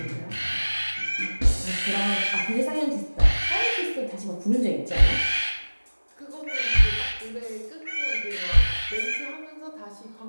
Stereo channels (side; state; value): both; inverted; correlation -1.00